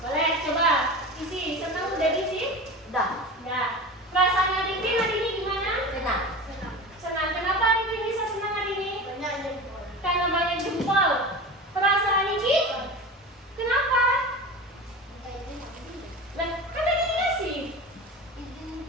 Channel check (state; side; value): normal; both; correlation 0.31